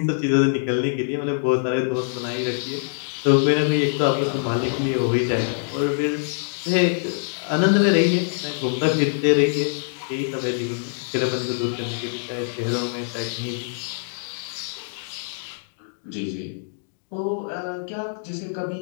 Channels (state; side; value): silent; right; digital silence